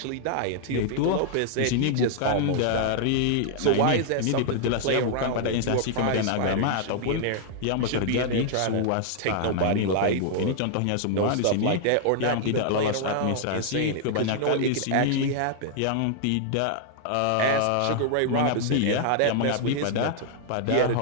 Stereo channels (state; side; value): different; both; correlation -0.01